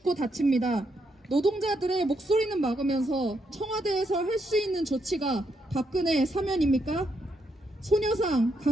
다칩니다. 노동자들의 목소리는 막으면서 청와대에서 할 수 있는 조치가 박근혜 사면입니까? 소녀상,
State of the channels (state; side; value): normal; both; correlation 0.79